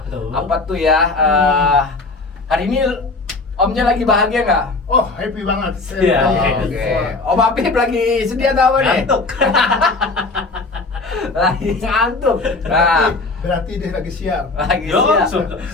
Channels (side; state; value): right; quieter; 3.5 dB